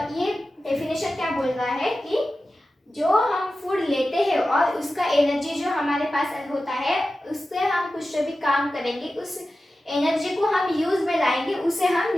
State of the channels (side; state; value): both; normal; correlation 0.94